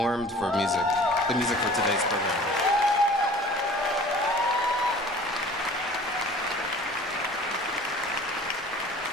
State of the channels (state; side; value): normal; both; correlation 0.46